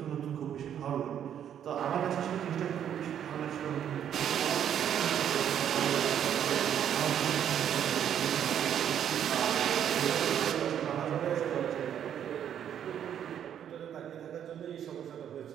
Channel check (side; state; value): left; quieter; 9.5 dB